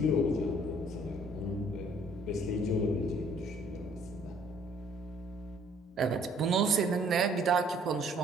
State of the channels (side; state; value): both; normal; correlation 0.59